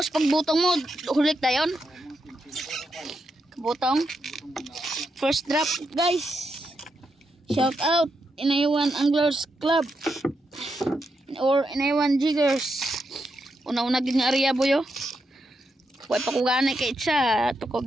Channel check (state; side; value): normal; both; correlation 0.84